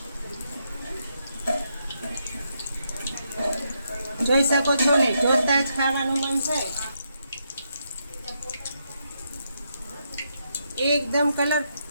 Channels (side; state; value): both; inverted; correlation -0.80